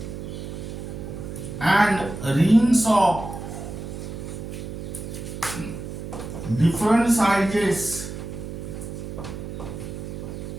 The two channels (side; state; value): right; noise; hum, 8 dB below the sound